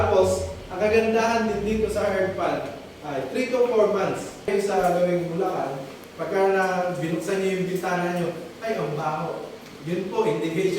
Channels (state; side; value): identical; both; correlation 1.00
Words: ang kagandahan din dito sa hard pan ay 3 to 4 months. Sa gawing Bulacan, pagka binuksan niyo yung bintana niyo, ay ang baho. Yun po,